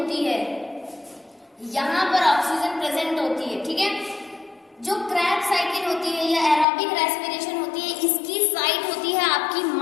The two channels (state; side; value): drops out; right; at 6.7 s